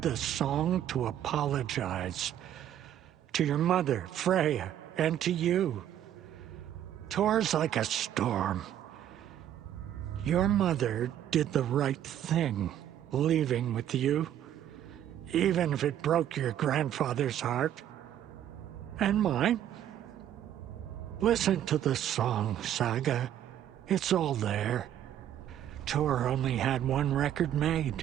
song to apologize. To your mother, Freya, and to you. Tor's like a storm. Your mother did the right thing, leaving with you, even if it broke your grandfather's heart. And mine. Listen to the song, Saga. It's all there. Tor only had one record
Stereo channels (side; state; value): left; quieter; 10.9 dB